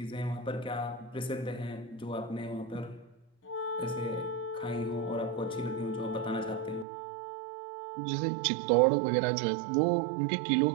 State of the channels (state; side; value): drops out; left; at 6.9 s